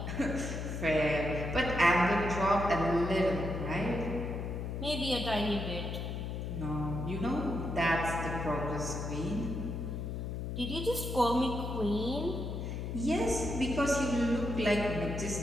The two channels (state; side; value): noise; left; hum, 4 dB below the sound